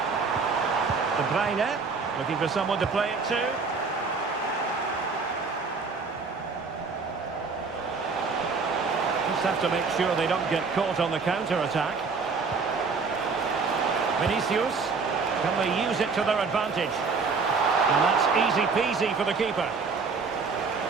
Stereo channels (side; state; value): left; quieter; 4.7 dB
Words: De Bruyne, looking for someone to play it to. Just have to make sure they don't get caught on the counter-attack. Vinicius, can they use it to their advantage? And that's easy peasy for the keeper.